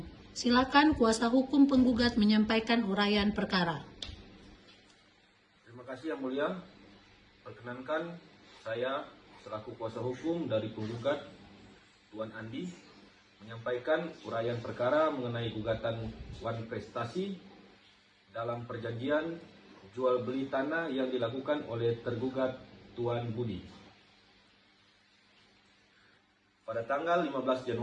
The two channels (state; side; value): identical; both; correlation 1.00